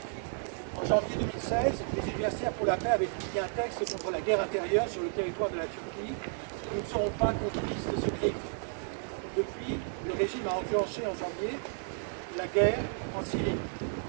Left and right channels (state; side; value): silent; left; 56 dB below the other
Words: En janvier 2016, les universitaires pour la paix avaient publié un texte contre la guerre intérieure sur le territoire de la Turquie. Nous ne serons pas complices de ce crime. Depuis, le régime a enclenché en janvier la guerre en Syrie.